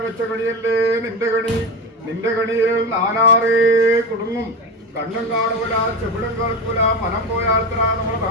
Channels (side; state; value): both; normal; correlation 0.21